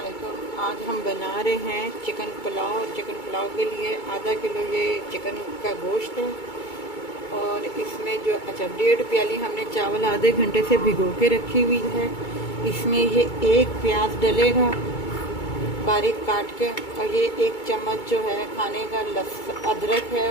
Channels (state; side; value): late; right; 2.3 ms